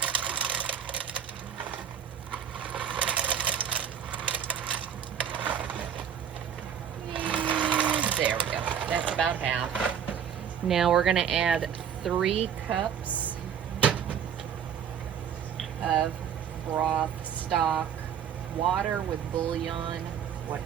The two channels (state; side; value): quieter; left; 8.4 dB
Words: There we go. That's about half. Now we're going to add 3 cups of broth, stock, water with bouillon,